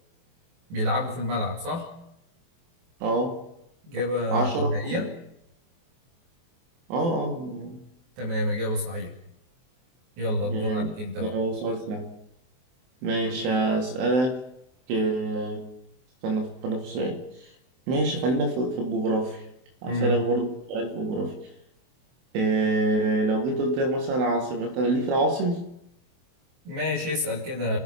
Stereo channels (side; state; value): left; late; 23 ms